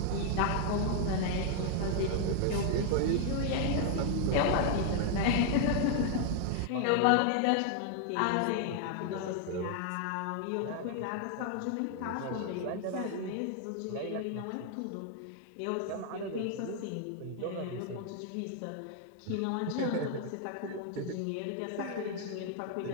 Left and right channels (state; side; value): different; both; correlation 0.00